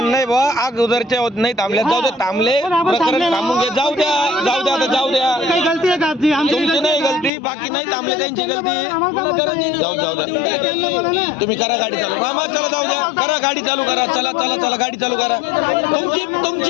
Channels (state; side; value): drops out; right; at 7.3 s